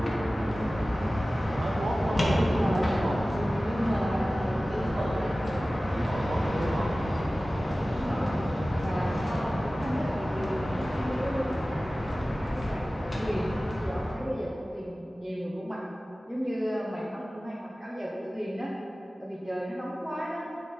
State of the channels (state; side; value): normal; both; correlation 0.97